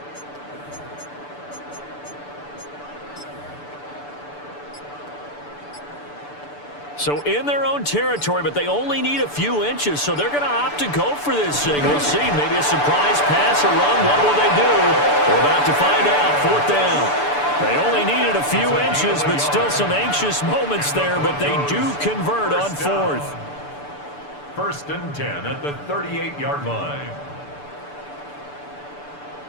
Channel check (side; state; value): right; late; 6.9 ms